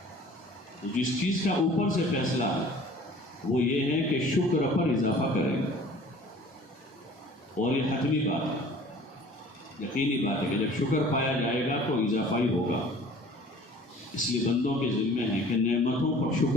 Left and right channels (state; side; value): normal; both; correlation 0.49